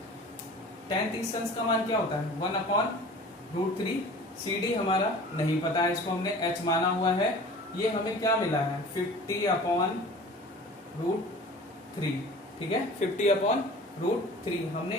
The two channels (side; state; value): both; normal; correlation 0.42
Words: tan 30 अंश का मान क्या होता है, 1/√3। CD हमारा नहीं पता है, इसको हमने h माना हुआ है। ये हमें क्या मिला है, 50/√3। ठीक है, 50/√3।